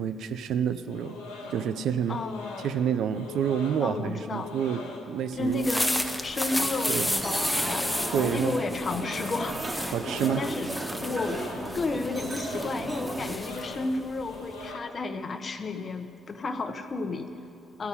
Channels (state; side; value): normal; both; correlation 0.75